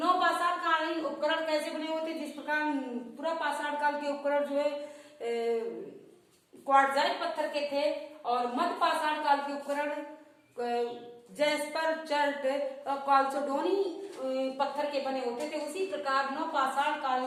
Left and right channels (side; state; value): both; identical; correlation 1.00